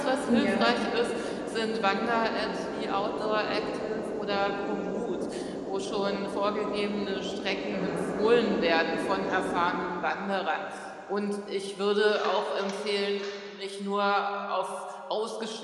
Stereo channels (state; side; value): identical; both; correlation 1.00